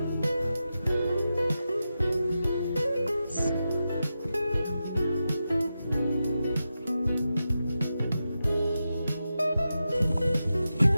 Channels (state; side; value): inverted; both; correlation -0.90